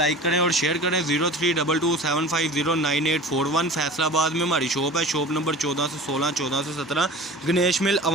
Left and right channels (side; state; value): both; normal; correlation 0.38